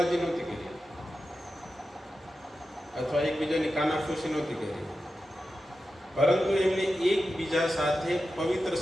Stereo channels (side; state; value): both; normal; correlation 0.91